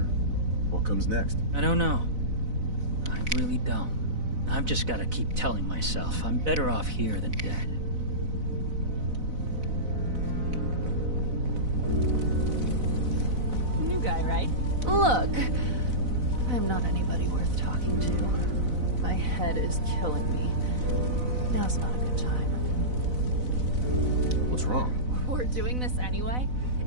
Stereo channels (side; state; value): left; late; 4.0 ms